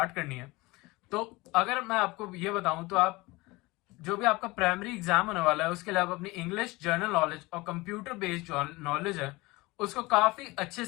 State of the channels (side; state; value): right; quieter; 22.3 dB